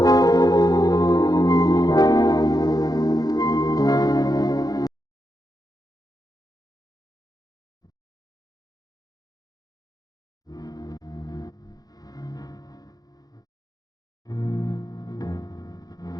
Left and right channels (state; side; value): late; right; 0.19 ms